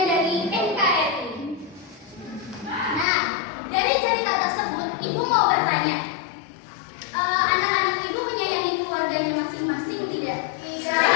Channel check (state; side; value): drops out; right; at 3.1 s